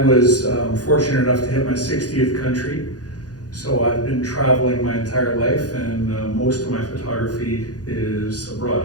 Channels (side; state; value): right; late; 0.68 ms